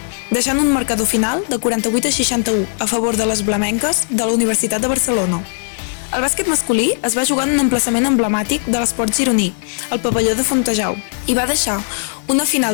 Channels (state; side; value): silent; right; 68 dB below the other